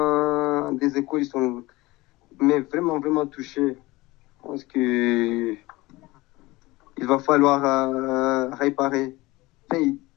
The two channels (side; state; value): right; quieter; 20.8 dB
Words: des écoles, ils sont mais vraiment, vraiment touchées. Je pense que il va falloir réparer.